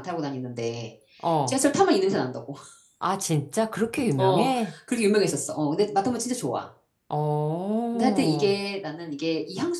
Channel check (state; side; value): identical; both; correlation 1.00